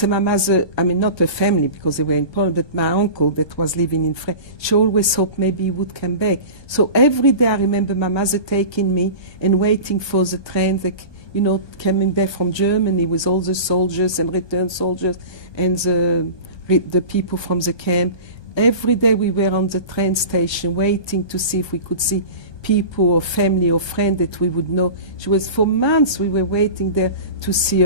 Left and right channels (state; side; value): late; right; 1.3 ms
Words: my mother, I mean, not her family because they were in Poland, but my uncle that was living in France, she always hoped maybe he would come back. So every day I remember my mother taking me and waiting for the train that, you know, coming back from Germany with all the soldiers and returned soldiers and the people from the camp. every day we were on the train station waiting to see if we could see people or family or friend that we would know. She was, for months we were waiting there to see